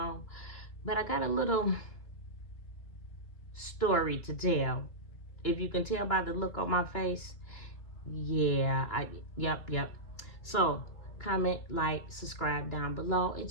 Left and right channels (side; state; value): right; late; 2.9 ms